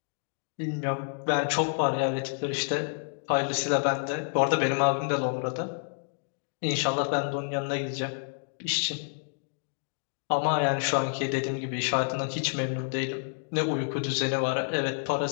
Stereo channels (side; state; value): right; silent; digital silence